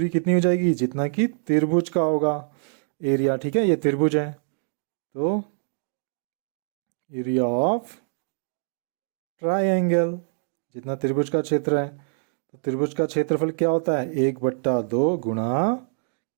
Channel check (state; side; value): silent; left; digital silence